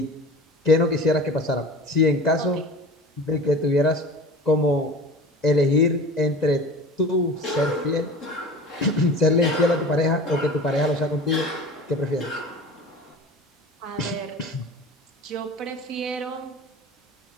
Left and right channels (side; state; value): both; normal; correlation 0.37